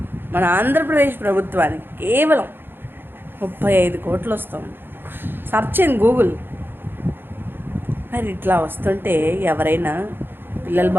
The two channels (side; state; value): left; late; 0.10 ms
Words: మన ఆంధ్రప్రదేశ్ ప్రభుత్వానికి కేవలం 35 కోట్లు వస్తుంది. Search in Google. మరి ఇట్లా వస్తుంటే ఎవరైనా పిల్లలు